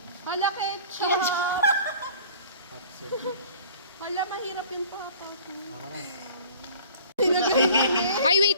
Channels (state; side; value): inverted; both; correlation -0.47